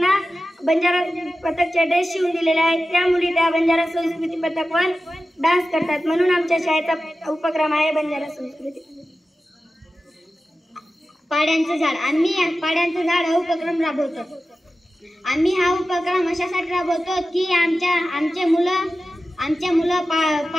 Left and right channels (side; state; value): both; normal; correlation 0.94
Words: बंजारा पथकचे ड्रेस शिवून दिलेले आहेत. त्या मुली त्या बंजारा संस्कृती पथकवर डान्स करतात. म्हणून आमच्या शाळेचा उपक्रम आहे बंजारा संस्कृती. पाड्यांचं झाड. आम्ही पाड्यांचं झाड हा उपक्रम राबवतो. आम्ही हा उपक्रम अशासाठी राबवतो की आमचे मुलं